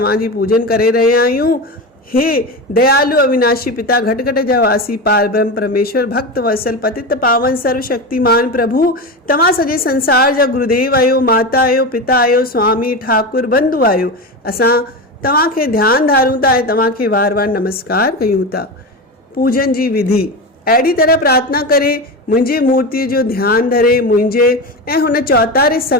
पूजन करे रहिया आहियूं। हे दयालु अविनाशी पिता, घट घट जा वासी, पार ब्रह्म परमेश्वर, भक्त वत्सल, पतित पावन, सर्वशक्तिमान प्रभु, तव्हां सॼे संसार जा गुरुदेव आहियो, माता आहियो, पिता आहियो, स्वामी ठाकुर बंधु आहियो। असां तव्हांखे ध्यानु धारूं था ऐं तव्हांखे वार वार नमस्कार कयूं था। पूजन जी विधि अहिड़ी तरह प्रार्थना करे मुंहिंजी मूर्तिअ जो ध्यानु धरे मुंहिंजे ऐं हुन चौतारे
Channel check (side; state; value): both; normal; correlation 0.21